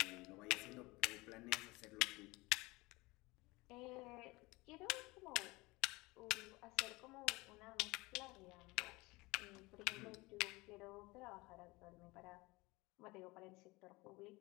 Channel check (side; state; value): right; quieter; 22.9 dB